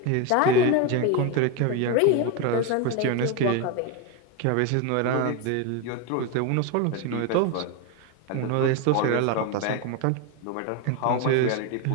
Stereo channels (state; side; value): different; both; correlation 0.03